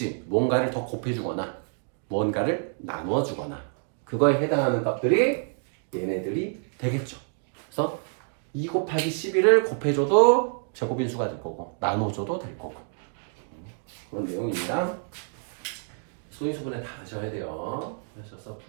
뭔가를 더 곱해주거나 뭔가를 나누어주거나 그거에 해당하는 값들이 얘네들이 되겠죠. 그래서 2 곱하기 11을 곱해줘도 제곱인 수가 될 거고 나눠줘도 될 거고 그런 내용입니다. 소인수분해 다 하셔야 돼요. 하셔서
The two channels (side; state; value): left; silent; 60 dB below the other